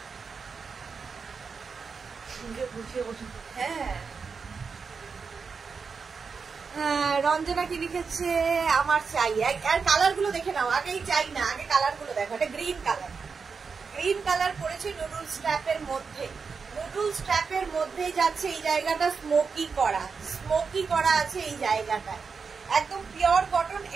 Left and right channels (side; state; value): left; quieter; 5.3 dB